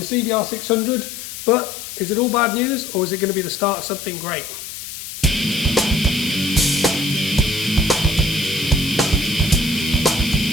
CBR600, but is it all bad news or is it going to be the start of something great?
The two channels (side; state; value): left; noise; hiss, 10 dB below the sound